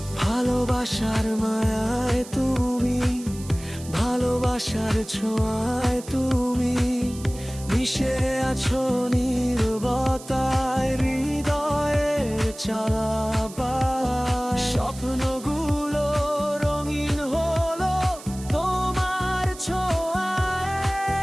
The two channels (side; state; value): right; noise; hiss, 17 dB below the sound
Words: ভালোবাসার মায়ায় তুমি, ভালোবাসার ছোঁয়ায় তুমি মিশে আছো নীরবতায়, হৃদয়ের চালাবার স্বপ্নগুলো রঙিন হলো তোমার ছোঁয়ায়।